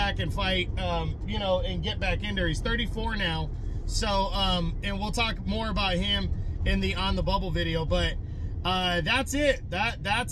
and fight, you know, and get back in there. He's 34 now. So, and we'll talk more about him in the On the Bubble video, but that's it.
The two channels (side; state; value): both; identical; correlation 1.00